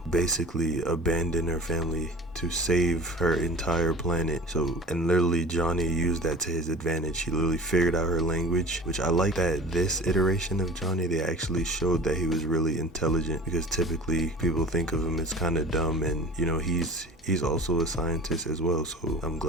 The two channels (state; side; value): normal; both; correlation 0.39